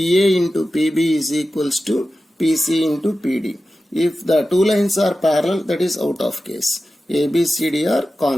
into PB is equals to PC into PD. If the 2 lines are parallel, that is out of case. ABCD are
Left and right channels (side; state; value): both; normal; correlation 0.94